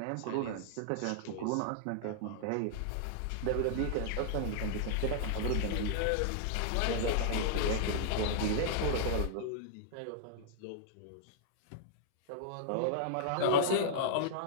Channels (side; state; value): both; different; correlation -0.01